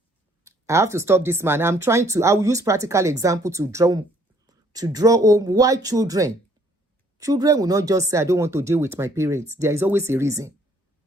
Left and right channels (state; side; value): normal; both; correlation 0.63